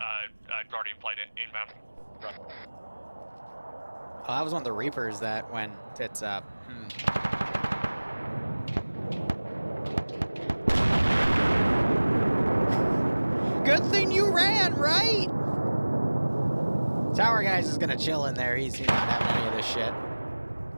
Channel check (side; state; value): both; inverted; correlation -1.00